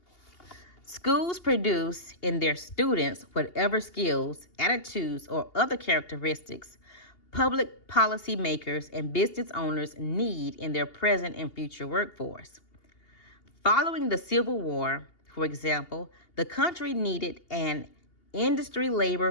Schools produce in their students whatever skills, attitudes, or other characteristics public policy makers and business owners need in their present and future workforce. Following the Civil War, for example, the country needed an industry labor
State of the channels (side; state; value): right; late; 2.8 ms